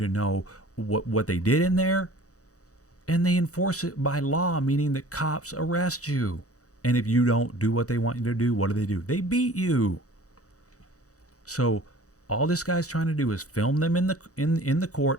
know what they did in there. And they enforce it by law, meaning that cops arrest you. And if you don't do what they want you to do, what do? They beat you. So all this guy's trying to do is film them in the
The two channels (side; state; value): right; late; 0.66 ms